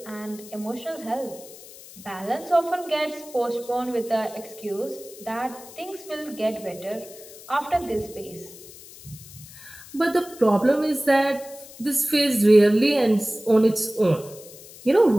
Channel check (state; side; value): noise; left; hiss, 18 dB below the sound